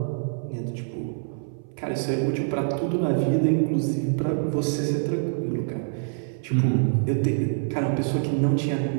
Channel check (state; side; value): silent; left; 59 dB below the other